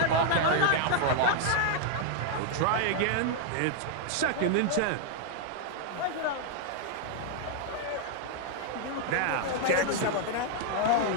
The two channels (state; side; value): different; both; correlation 0.00